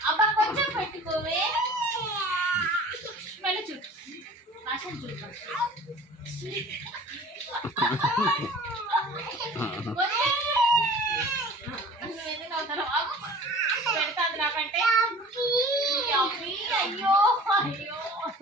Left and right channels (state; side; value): normal; both; correlation 0.44